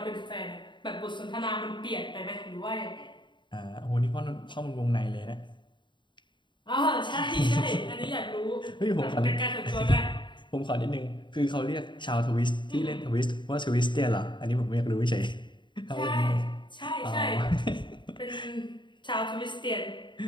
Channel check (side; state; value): right; late; 0.23 ms